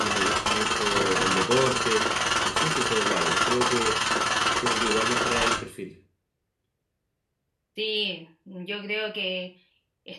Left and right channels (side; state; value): both; identical; correlation 1.00